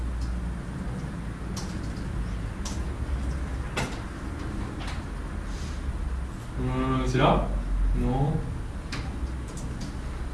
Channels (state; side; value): identical; both; correlation 1.00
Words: C'est là? Non.